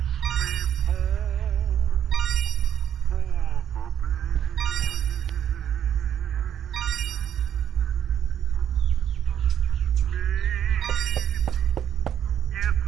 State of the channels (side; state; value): left; quieter; 9.7 dB